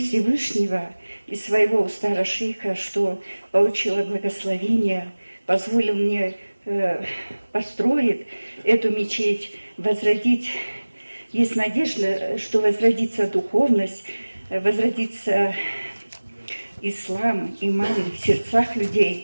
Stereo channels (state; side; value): inverted; both; correlation -1.00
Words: и своего старошейха, что получила благословение, позволил мне построить эту мечеть, возродить. Есть надежда, что возродится духовность, возродится ислам, иман в сердцах